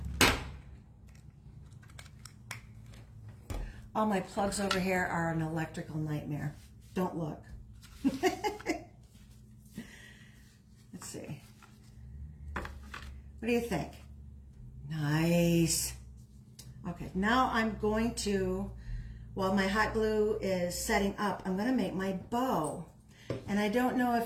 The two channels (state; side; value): identical; both; correlation 1.00